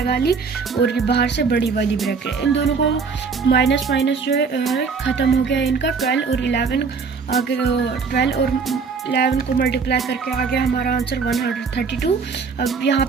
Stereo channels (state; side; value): quieter; left; 5.2 dB